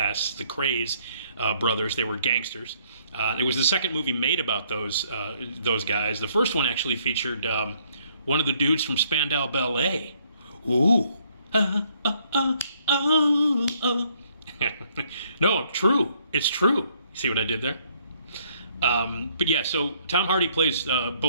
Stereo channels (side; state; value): both; inverted; correlation -0.67